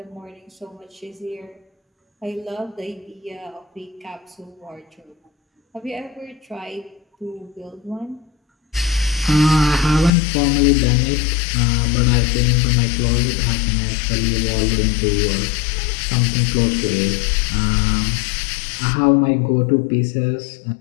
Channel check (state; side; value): drops out; right; at 10.1 s